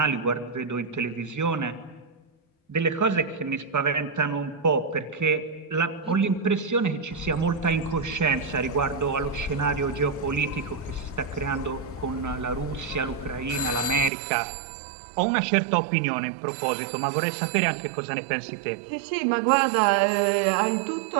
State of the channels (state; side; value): drops out; left; at 14.1 s